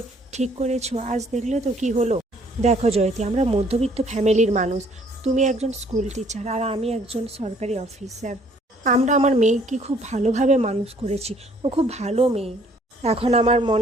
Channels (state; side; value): normal; both; correlation 0.61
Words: ঠিক করেছো, আজ দেখলে তো কি হলো। দেখো জয়তী, আমরা মধ্যবিত্ত ফ্যামিলির মানুষ। তুমি একজন স্কুল টিচার আর আমি একজন সরকারি অফিসার। আমরা আমার মেয়েকে খুব ভালোভাবে মানুষ করেছি, ও খুব ভালো মেয়ে। এখন আমার